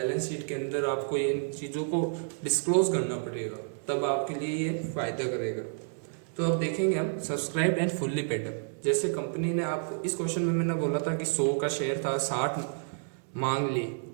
शीट के अंदर आपको इन चीज़ों को डिस्क्लोज करना पड़ेगा, तब आपके लिए ये फायदा करेगा। तो अब देखेंगे हम subscribe and fully paid up. जैसे कंपनी ने आपको इस क्वेश्चन में मैंने बोला था कि 100 का शेयर था, 60 मांग ली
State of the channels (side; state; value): left; silent; digital silence